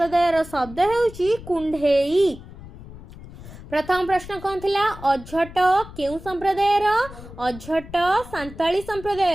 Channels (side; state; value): left; noise; rumble, 16 dB below the sound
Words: शब्द हेउची कुंढेई। प्रथम प्रश्न कौन थिला अझट केउं संप्रदायर अझट सांताली